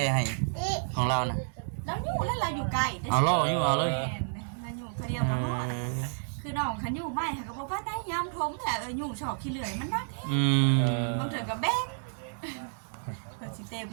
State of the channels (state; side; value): silent; left; digital silence